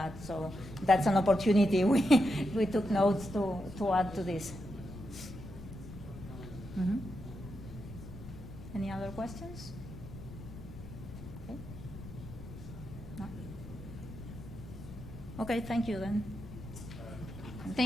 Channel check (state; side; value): noise; left; rumble, 13 dB below the sound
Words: So that's an opportunity we took notes to add to this. Mm-hmm. Any other questions? Okay. No? Okay, thank you then.